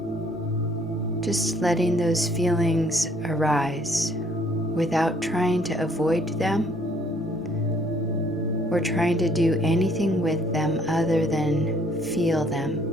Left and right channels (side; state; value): both; normal; correlation 0.62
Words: just letting those feelings arise without trying to avoid them or trying to do anything with them other than feel them.